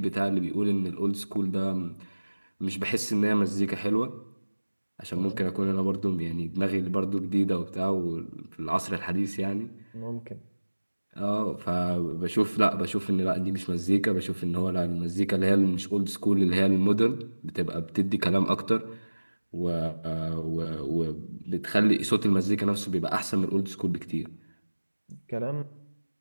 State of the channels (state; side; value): inverted; both; correlation -1.00